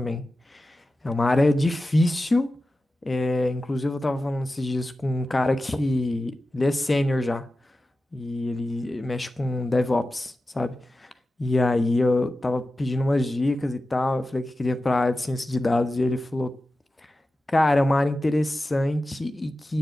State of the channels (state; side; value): normal; both; correlation 0.94